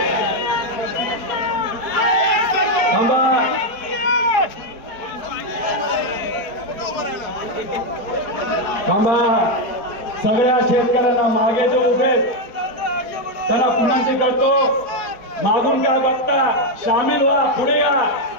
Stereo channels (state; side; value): late; right; 4.4 ms